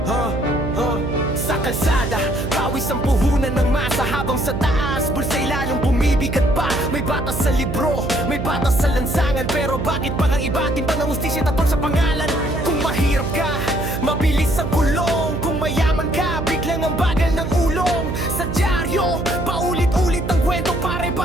Sa kalsada, pawis ang puhunan ng masa, habang sa taas, bulsa'y lalong bumibigat pa. May batas sa libro, may batas sa lansangan, pero bakit pa ang iba timbang ng hustisya tatol sa pangalan? Kung mahirap ka, mabilis ang kulong. Kung mayaman ka, biglang ang bagal ng ulong. Sa dyaryo, paulit-ulit ang kwento,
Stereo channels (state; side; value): noise; right; hum, 4 dB below the sound